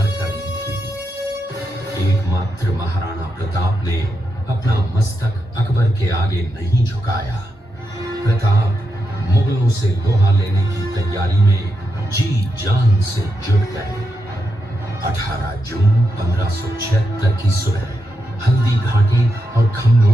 कर ली थी। एकमात्र महाराणा प्रताप ने अपना मस्तक अकबर के आगे नहीं झुकाया। प्रताप मुगलों से लोहा लेने की तैयारी में जी जान से जुट गए। 18 जून 1576 की सुबह हल्दी घाटी और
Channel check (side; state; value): both; normal; correlation 0.85